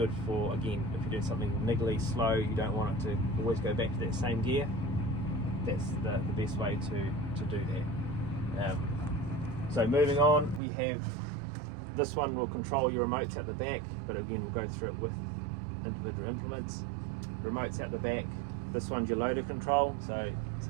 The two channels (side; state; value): left; drops out; at 10.6 s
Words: for, again, if you're doing something niggly, slow, you don't want it to always go back to that same gear. That's the best way to do that. So moving on, we have this one will control your remotes at the back, but again we'll go through it with individual implements. Remotes at the back. This one's your loader control, so